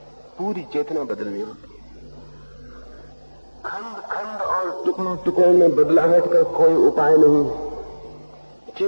पूरी चेतना बदलनी होती है। खंड खंड और टुकड़ों टुकड़ों में बदलाहट का कोई उपाय नहीं।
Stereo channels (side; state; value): both; inverted; correlation -1.00